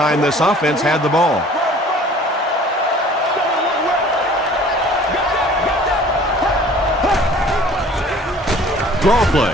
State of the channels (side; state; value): both; normal; correlation 0.50